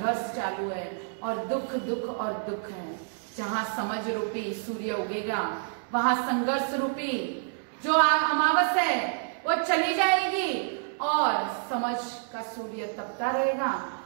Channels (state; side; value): silent; left; digital silence